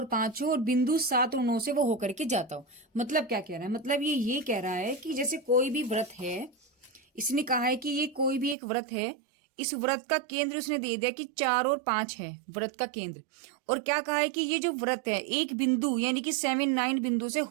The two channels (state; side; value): drops out; left; at 8.6 s